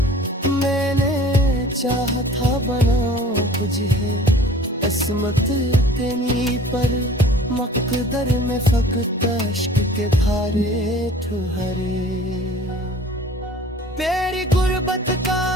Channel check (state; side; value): normal; both; correlation 0.47